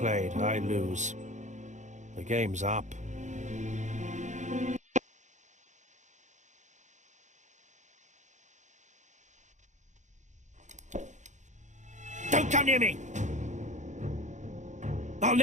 I lose. The game's up. Don't come near me! I'll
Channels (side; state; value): left; late; 0.35 ms